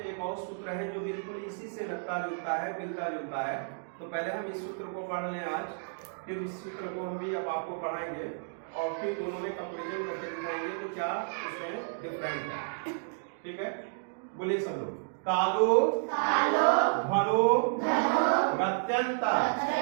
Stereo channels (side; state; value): left; silent; digital silence